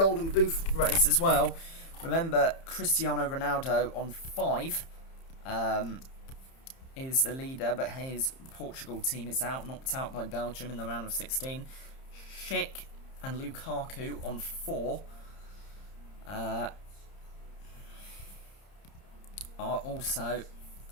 Boot race as well. Remember, Cristiano Ronaldo on 5... is the leader, but his Portugal team is knocked out by Belgium in the round of 16. Schick and Lukaku on 4 are also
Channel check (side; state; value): right; late; 30 ms